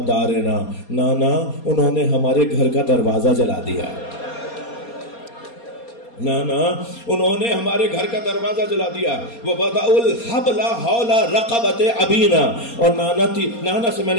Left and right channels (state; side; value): late; right; 4.2 ms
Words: دَارِنَا، نانا انہوں نے ہمارے گھر کا دروازہ جلا دیا، نانا انہوں نے ہمارے گھر کا دروازہ جلا دیا۔ وَوَضَعُوا الْحَبْلَ حَوْلَ رَقَبَتِ أَبِينَا، اور نانا سے میں